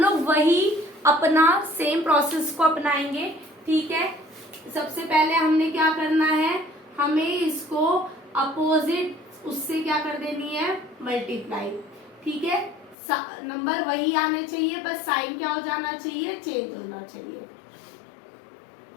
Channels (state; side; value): drops out; right; at 13.0 s